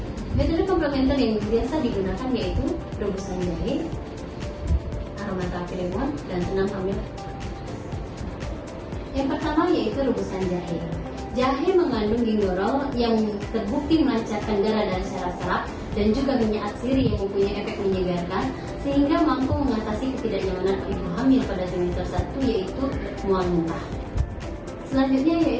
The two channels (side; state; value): both; identical; correlation 1.00